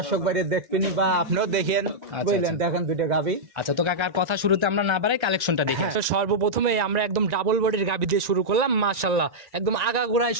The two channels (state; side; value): late; left; 1.9 ms